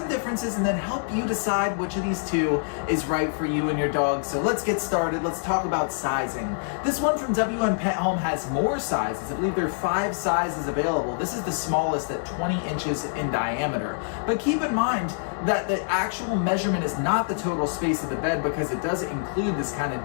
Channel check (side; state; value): right; silent; 61 dB below the other